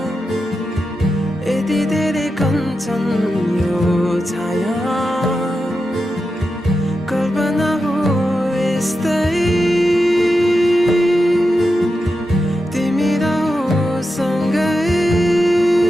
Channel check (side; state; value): both; normal; correlation 0.89